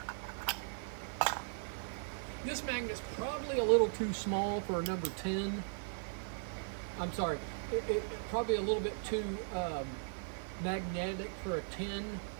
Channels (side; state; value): left; silent; digital silence